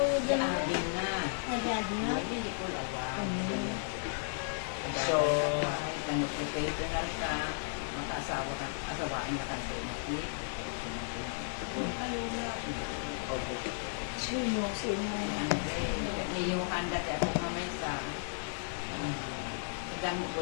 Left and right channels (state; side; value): silent; right; digital silence